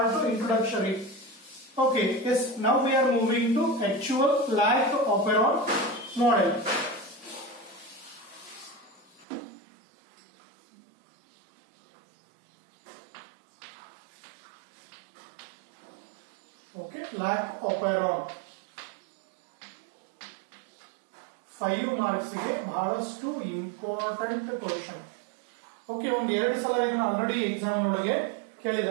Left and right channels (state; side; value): drops out; left; at 9.2 s